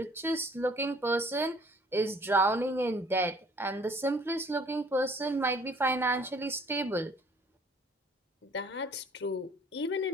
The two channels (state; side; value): normal; both; correlation 0.56